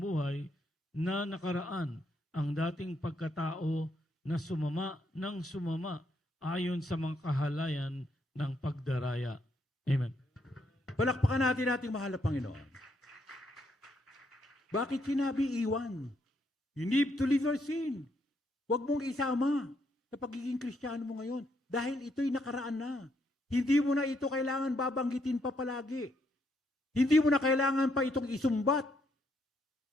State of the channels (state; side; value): normal; both; correlation 0.75